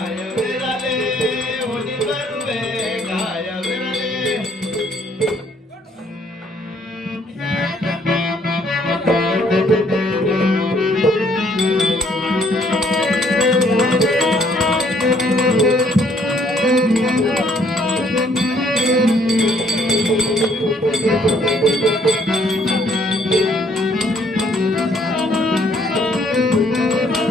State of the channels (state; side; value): normal; both; correlation 0.64